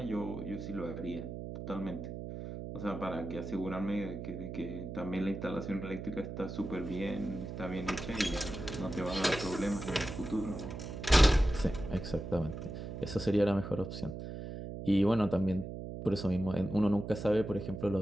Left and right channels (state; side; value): noise; right; hum, 7 dB below the sound